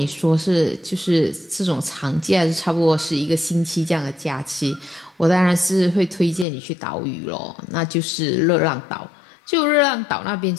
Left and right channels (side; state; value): right; drops out; at 6.5 s